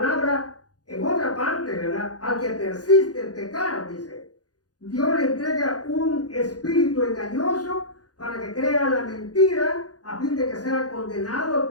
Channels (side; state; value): right; late; 0.68 ms